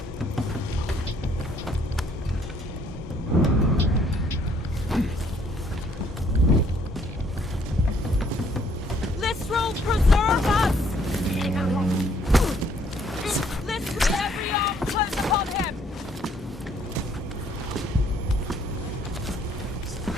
Preserve us! Let's with every arm close upon him!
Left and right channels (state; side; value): normal; both; correlation 0.65